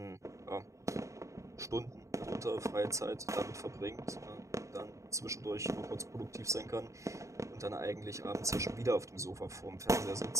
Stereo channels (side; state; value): left; late; 0.15 ms